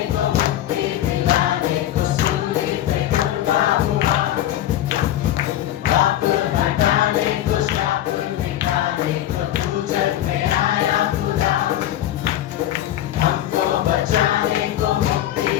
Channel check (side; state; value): right; quieter; 12.7 dB